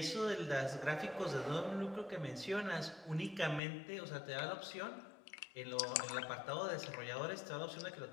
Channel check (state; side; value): drops out; right; at 3.6 s